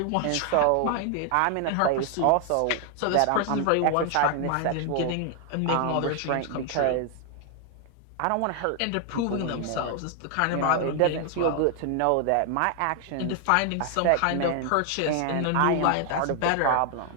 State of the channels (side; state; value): both; different; correlation 0.00